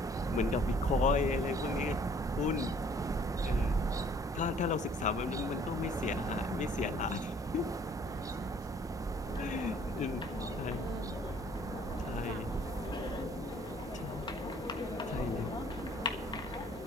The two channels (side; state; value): both; normal; correlation 0.57